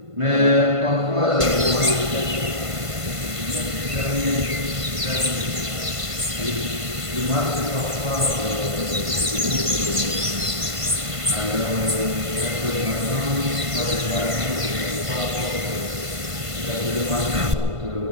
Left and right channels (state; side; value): late; left; 1.5 ms